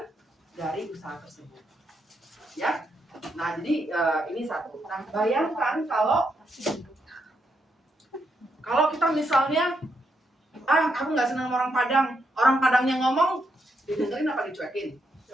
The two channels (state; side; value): normal; both; correlation 0.80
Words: dari usaha tersebut. Ya, nah jadi ini satu. Nah bayangkan kalau kita misalnya, aku nggak senang sama orang Padangnya ngomong, didengerin apa dicuekin?